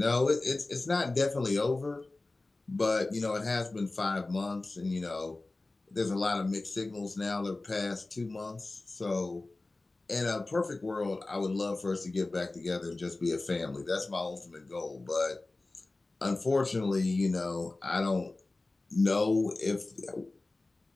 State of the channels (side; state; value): right; quieter; 3.1 dB